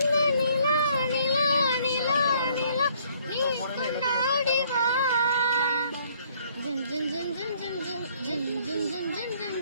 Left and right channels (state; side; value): inverted; both; correlation -0.62